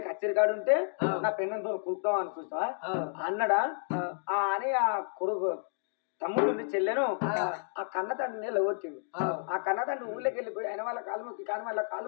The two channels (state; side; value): silent; right; digital silence